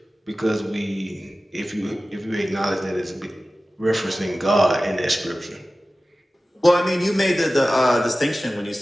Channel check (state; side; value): normal; both; correlation 0.96